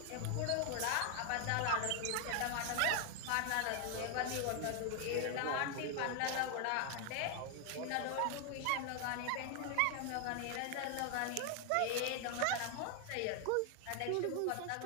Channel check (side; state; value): both; different; correlation 0.01